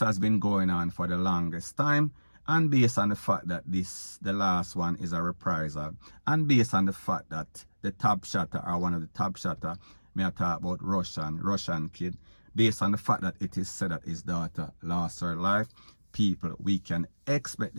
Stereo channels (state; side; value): inverted; both; correlation -1.00